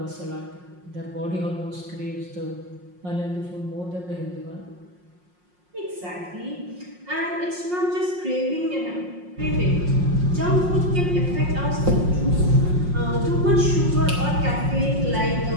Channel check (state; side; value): late; left; 5.6 ms